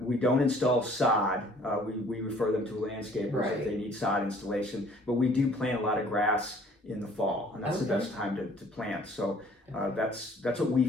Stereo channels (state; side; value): normal; both; correlation 0.56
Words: don't install sod. We refer them to landscapers if they need sod installation. But we do plant a lot of grass in the fall, and that's the best time to plant. So that's what we